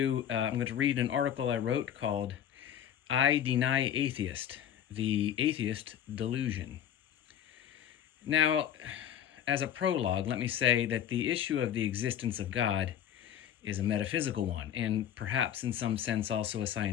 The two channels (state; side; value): quieter; right; 9.9 dB